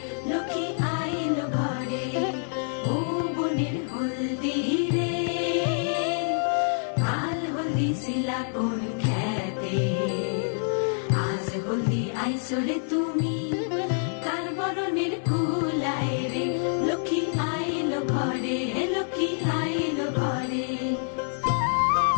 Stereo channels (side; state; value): right; silent; digital silence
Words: লক্ষ্মী আইল ঘরে ও বনের হলদি রে কাল হলদি শিলা কোন খেতে আজ হলদি আইসরে তুমি কার বরণের কুলাই রে লক্ষ্মী আইল ঘরে লক্ষ্মী আইল ঘরে